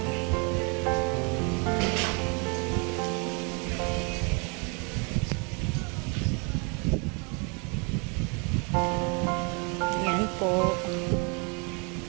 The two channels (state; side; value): quieter; left; 33.6 dB